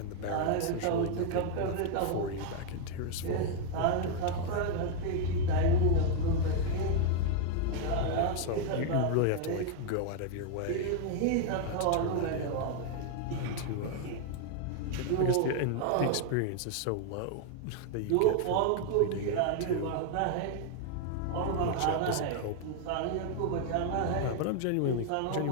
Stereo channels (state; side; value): different; both; correlation 0.00